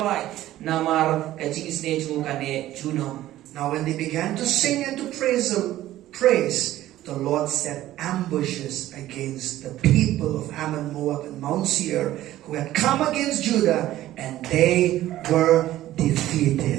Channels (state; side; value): quieter; left; 14.4 dB